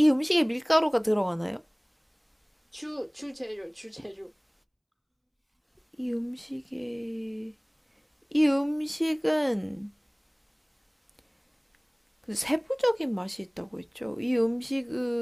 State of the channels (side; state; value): both; identical; correlation 1.00